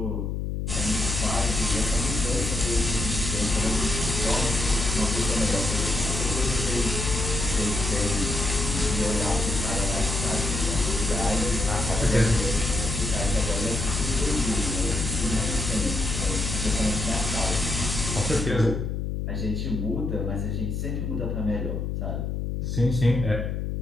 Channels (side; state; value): left; noise; hum, 2 dB below the sound